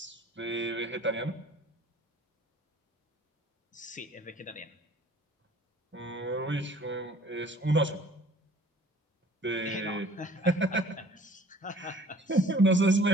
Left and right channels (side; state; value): both; normal; correlation 0.51